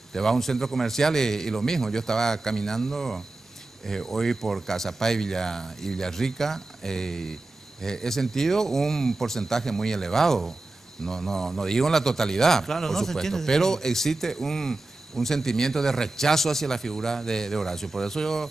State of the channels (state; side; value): quieter; left; 3.1 dB